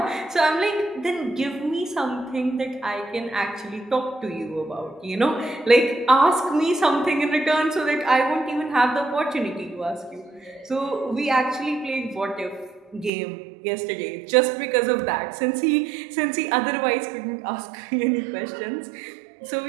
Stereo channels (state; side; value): drops out; left; at 13.1 s